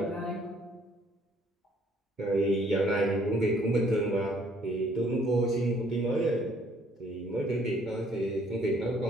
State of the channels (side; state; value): both; normal; correlation 0.62